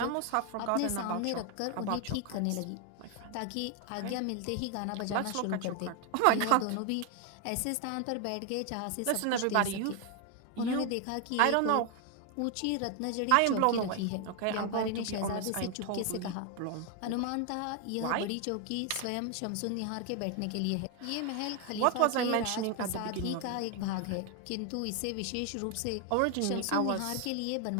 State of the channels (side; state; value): both; different; correlation 0.01